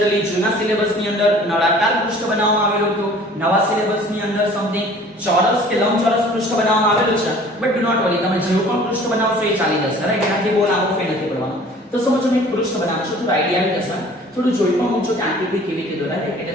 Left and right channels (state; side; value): normal; both; correlation 0.49